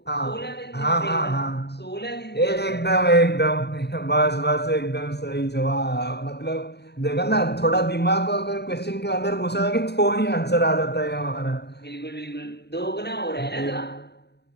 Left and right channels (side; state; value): right; late; 0.48 ms